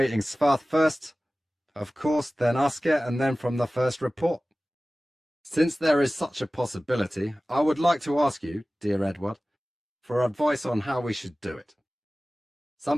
Svarth first, of course, then Asker, and then from the first report. Since there is such a possibility, I would like to ask you, dear Edward, for advice on how we should do it.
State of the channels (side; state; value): both; normal; correlation 0.97